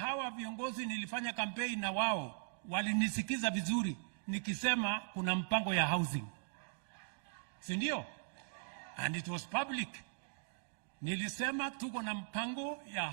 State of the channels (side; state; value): left; silent; digital silence